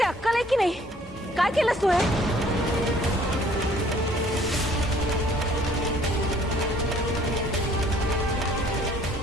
अक्कल आहे की नाही? काय केलंस तू?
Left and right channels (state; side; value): normal; both; correlation 0.58